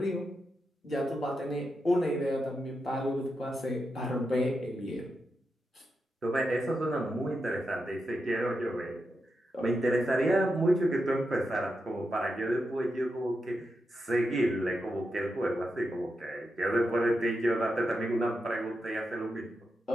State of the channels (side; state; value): both; normal; correlation 0.87